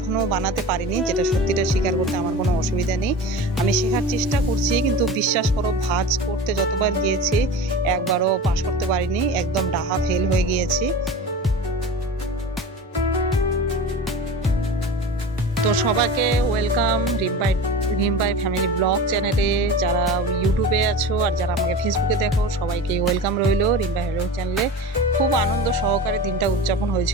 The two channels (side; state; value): both; normal; correlation 0.32